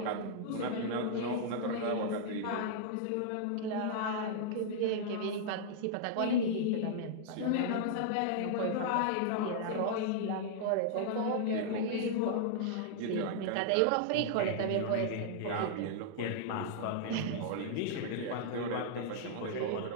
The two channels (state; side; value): different; both; correlation -0.01